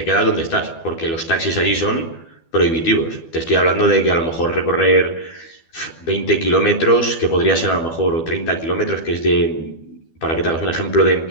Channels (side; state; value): right; late; 12 ms